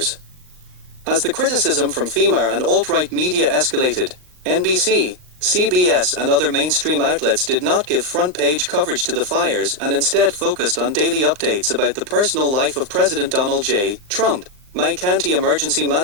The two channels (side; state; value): left; late; 39 ms